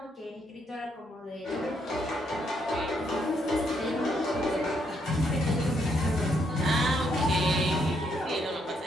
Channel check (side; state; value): both; normal; correlation 0.74